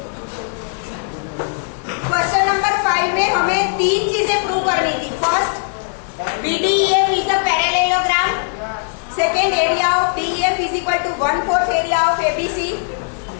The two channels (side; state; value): right; silent; 64 dB below the other